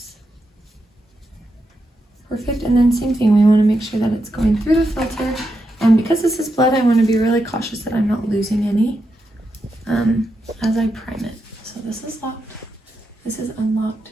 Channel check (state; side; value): normal; both; correlation 0.85